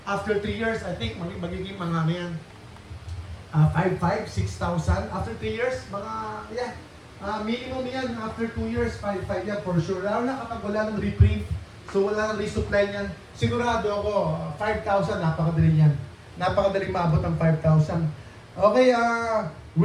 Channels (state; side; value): identical; both; correlation 1.00